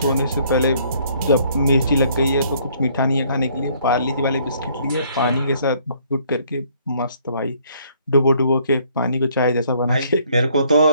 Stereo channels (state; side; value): inverted; both; correlation -0.64